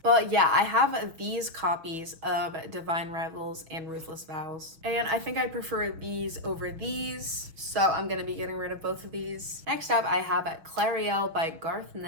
But yeah, I have these copies of Divine Rivals and Ruthless Vows. And I think I prefer these over these. So I'm gonna be getting rid of both of these. Next up, I have Clariel by Garth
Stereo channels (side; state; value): left; late; 6.2 ms